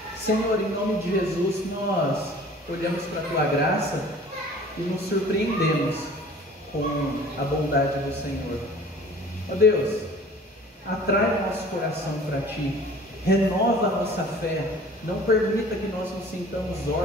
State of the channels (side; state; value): both; normal; correlation 0.47